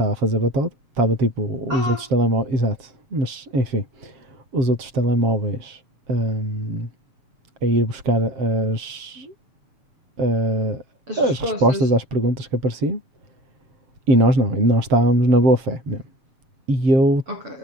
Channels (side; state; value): left; late; 7.5 ms